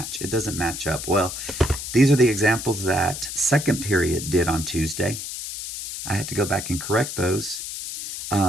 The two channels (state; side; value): noise; left; hiss, 7 dB below the sound